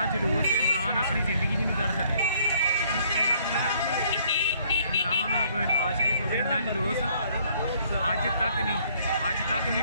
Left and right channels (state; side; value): inverted; both; correlation -0.63